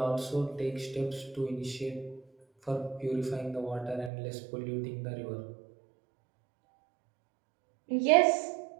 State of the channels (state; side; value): drops out; left; at 4.1 s